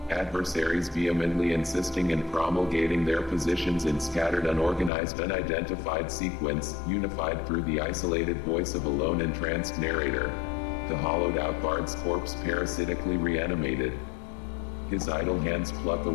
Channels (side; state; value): right; drops out; at 4.9 s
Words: Adversaries vehemently insisting and promulgating their positions in scattered, unorganized, unidentified sequence, unified through the isolated voice of a lone entranced narrator. The hollowed-out bard's corpse parasitically reanimated. His idle hands pluck